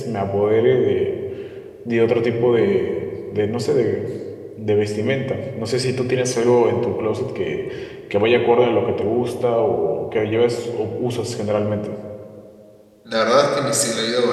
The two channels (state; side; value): identical; both; correlation 1.00